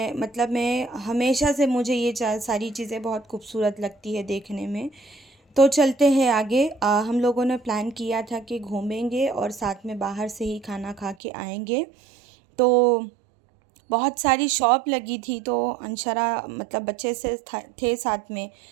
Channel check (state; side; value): drops out; left; at 11.2 s